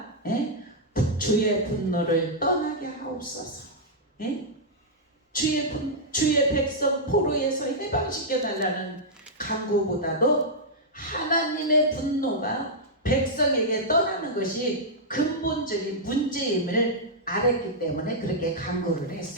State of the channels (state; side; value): normal; both; correlation -0.08